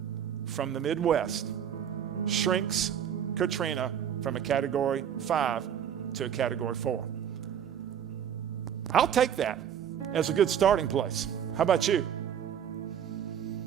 from the Midwest shrinks Katrina from a Category 5 to a Category 4. I'll take that as a good starting place. How about you?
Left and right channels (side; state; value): left; quieter; 9.0 dB